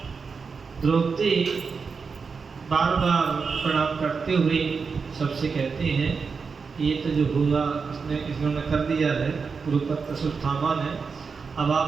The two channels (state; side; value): quieter; left; 5.2 dB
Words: द्रौपदी बार बार प्रणाम करते हुए सबसे कहते हैं, ये तो जो हुआ इसने कर दिया है, गुरुपुत्र सुष्ठामा ने। अब